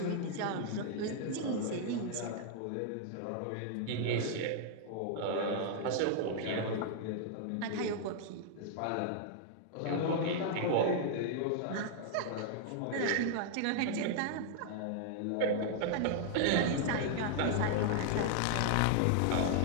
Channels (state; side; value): different; both; correlation -0.01